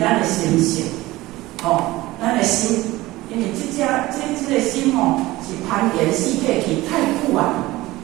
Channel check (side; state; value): left; quieter; 18.6 dB